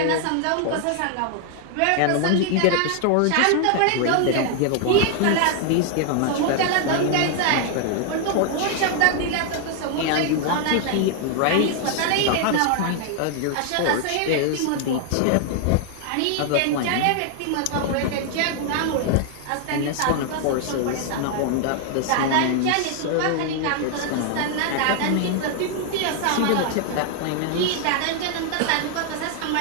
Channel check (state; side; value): different; both; correlation 0.00